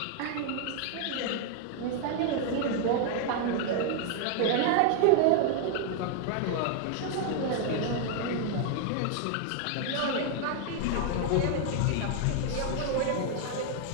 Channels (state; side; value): different; both; correlation 0.00